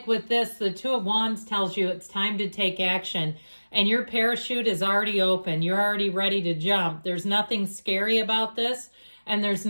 with this, the Two of Wands tells you it's time to take action. And your parachute is already open. You're already ready to jump. There's nothing scary about this. And there's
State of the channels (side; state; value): both; inverted; correlation -1.00